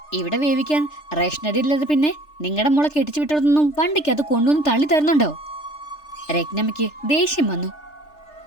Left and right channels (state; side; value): late; right; 3.3 ms